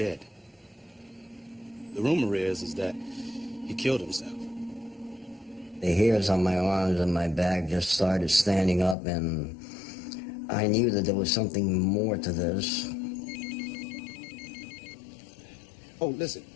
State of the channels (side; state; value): right; drops out; at 9.0 s